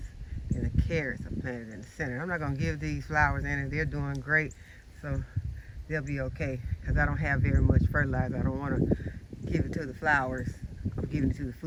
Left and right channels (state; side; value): identical; both; correlation 1.00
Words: And the carrots are planted in the center. I'm not going to give these flowers any. They're doing great, so they'll be okay because I don't have very much fertilizer. I don't want to give it to the flowers. I'm giving it to the